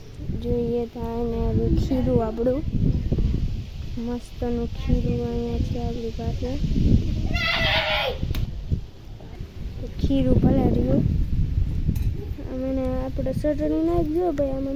જોઈએ તો એને ખીરું આપણું મસ્તનું ખીરું અહીંયા છે આપણી પાસે. ખીરું ભલે રહ્યું મને આપણે ચટણી નાખજો ભાઈ,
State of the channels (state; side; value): identical; both; correlation 1.00